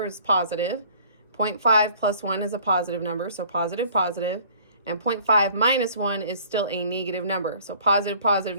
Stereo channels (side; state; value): both; inverted; correlation -0.53